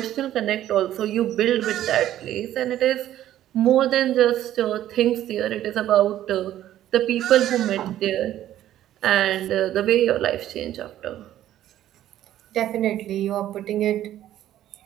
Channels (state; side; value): quieter; left; 12.6 dB